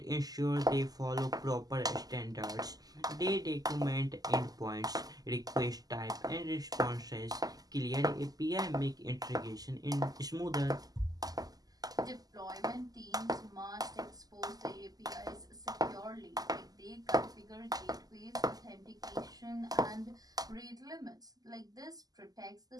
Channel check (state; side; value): late; left; 0.18 ms